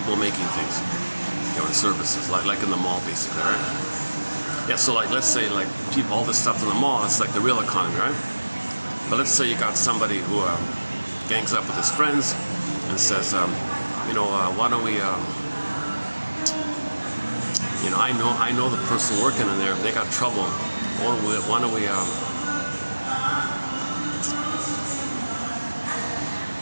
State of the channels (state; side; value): inverted; both; correlation -1.00